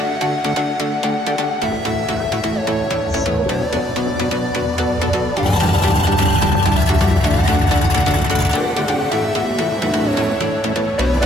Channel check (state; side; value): normal; both; correlation 0.69